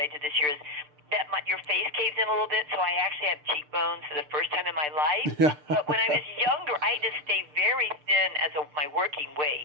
did this year, is that your face caves in a little bit, so I actually have cheekbones for the first time in my life. Yeah. But when I was younger, I had to stay very thin as my working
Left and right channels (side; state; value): left; late; 6.7 ms